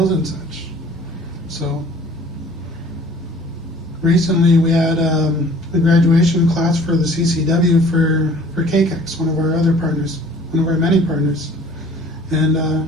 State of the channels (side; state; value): both; normal; correlation 0.51